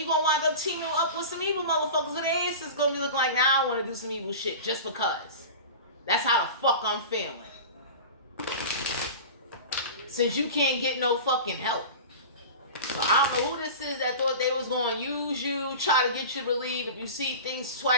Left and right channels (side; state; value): both; inverted; correlation -0.33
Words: gonna wind up teaming up with some evil motherfuckers with their asses gonna be looking like, now I want to do some evil shit just because. That's how the fuck I'm feeling. Since you can't get no fucking help. So I don't know who this is that thought they was going to use you, try to get you to believe if you see things